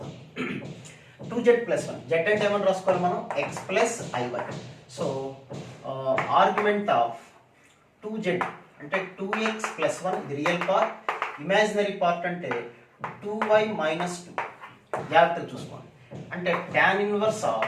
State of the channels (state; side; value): identical; both; correlation 1.00